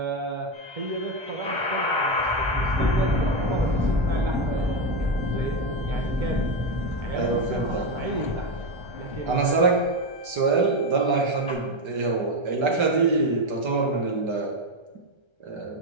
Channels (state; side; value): late; left; 1.3 ms